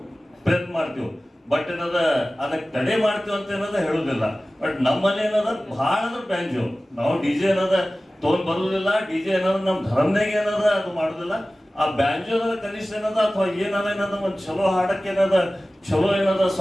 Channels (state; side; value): normal; both; correlation 0.97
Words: ಪ್ರಯತ್ನ ಮಾಡ್ತೀವಿ. ಬಟ್ ಏನದ ಅದಕ್ಕೆ ತಡೆ ಮಾಡ್ತೀವಿ ಅಂತ ಏನದ ಹೇಳುದಿಲ್ಲ. ಬಟ್ ನಮ್ಮಲ್ಲಿ ಏನದ ಬಹಳ ಅಂದ್ರೆ ಬ್ಯಾಂಜು ನಾವು ಡಿಜೆ ಏನದ ತಗೊಂಡ್ ಬರುದಿಲ್ಲ. ಡಿಜೆ ಏನದ ನಮ್ಮ ಧರ್ಮನಾಗ ಏನದ ಅದು ಮಾಡುದಿಲ್ಲ. ಆ ಬ್ಯಾಂಜೋ ಕನಿಷ್ಠ ಏನದ ಅಥವಾ ಏನದ ಒಂದು ಚಲೋ ಹಾಡಕ್ಕೆ ಏನದ ಚಲೋ ಏನದ